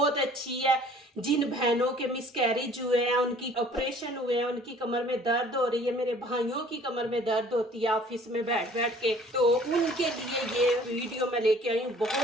अच्छी है। जिन बहनों के मिसकैरेज हुए हैं, उनकी ऑपरेशन हुए हैं, उनकी कमर में दर्द हो रही है, मेरे भाइयों की कमर में दर्द होती है ऑफिस में बैठ बैठ के, तो उनके लिए ये वीडियो मैं लेके आई हूँ।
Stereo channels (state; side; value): normal; both; correlation 0.52